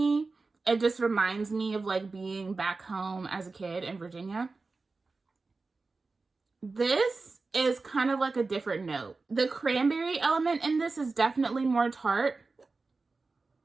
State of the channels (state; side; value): quieter; left; 3.9 dB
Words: It just reminds me of like being back home as a kid in Virginia. This is kind of like a different note. The cranberry element in this is definitely more tart.